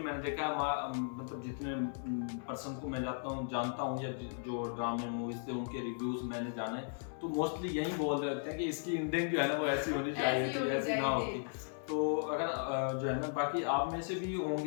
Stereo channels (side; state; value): right; silent; digital silence